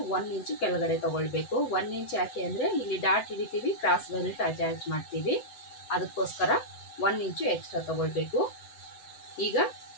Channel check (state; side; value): late; right; 7.9 ms